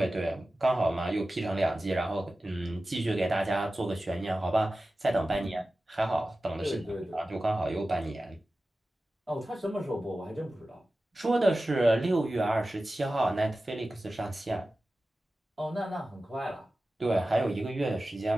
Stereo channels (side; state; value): both; normal; correlation 0.95